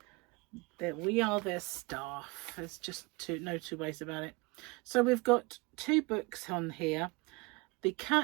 That we are their staff. There's just no two ways about it. So we've got 2 books on here. The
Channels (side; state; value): left; quieter; 25.9 dB